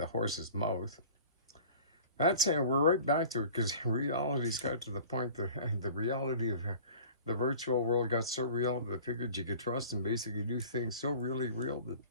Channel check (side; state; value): both; inverted; correlation -0.44